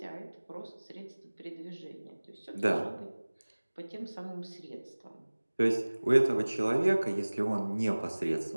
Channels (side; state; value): both; inverted; correlation -1.00